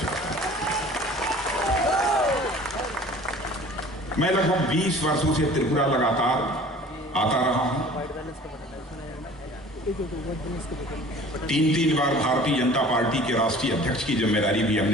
हूं। मैं लगभग 20 वर्षों से त्रिपुरा लगातार आता रहा हूं। 3 बार भारतीय जनता पार्टी के राष्ट्रीय अध्यक्ष की जिम्मेदारी भी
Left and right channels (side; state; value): both; normal; correlation 0.46